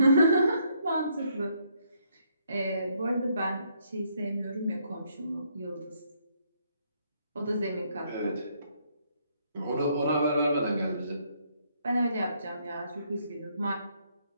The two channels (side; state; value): both; inverted; correlation -0.71